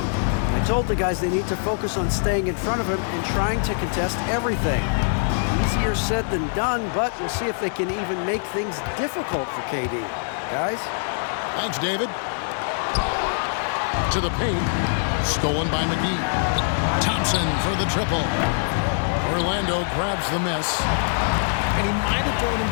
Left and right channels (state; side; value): silent; right; digital silence